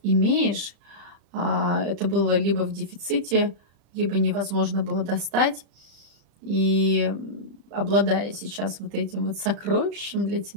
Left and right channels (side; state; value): left; late; 35 ms